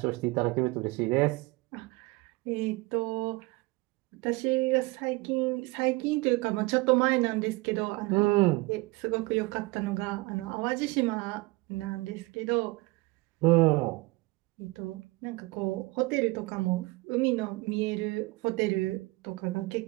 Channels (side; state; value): left; quieter; 23.2 dB